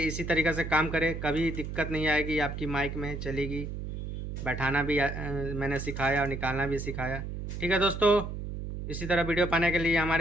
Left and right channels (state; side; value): noise; right; hum, 6 dB below the sound